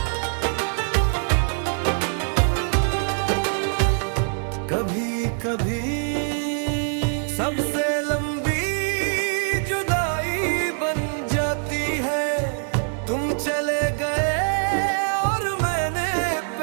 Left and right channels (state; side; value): silent; left; digital silence